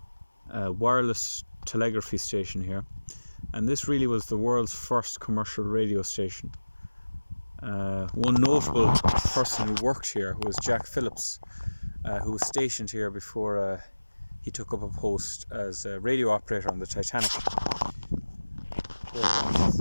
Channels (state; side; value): inverted; both; correlation -1.00